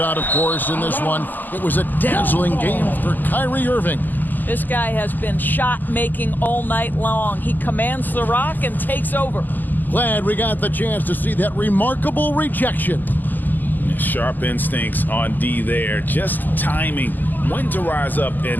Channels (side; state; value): right; late; 0.086 ms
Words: of course, in this one, it was a dazzling game for Kyrie Irving. This guy has been shot-making all night long. He commands the rock and takes over. Glad we got the chance to see that remarkable rejection. Sharp instincts on D there, just timing when to rise up